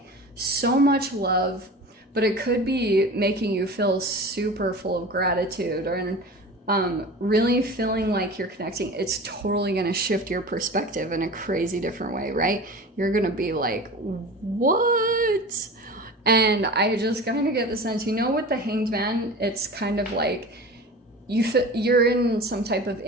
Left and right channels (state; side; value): normal; both; correlation 0.35